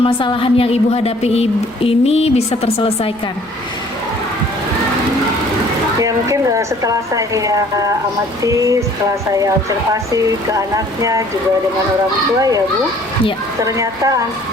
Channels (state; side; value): noise; left; rumble, 29 dB below the sound